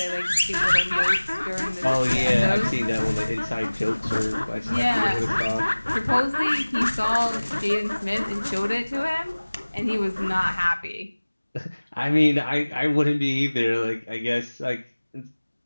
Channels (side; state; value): both; inverted; correlation -1.00